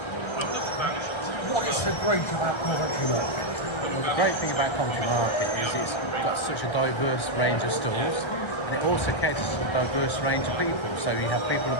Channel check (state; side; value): late; right; 1.3 ms